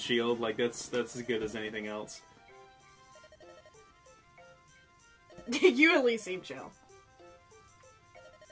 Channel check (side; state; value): both; identical; correlation 1.00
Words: shield. Like, that's as good as anything else. You at least seem chill.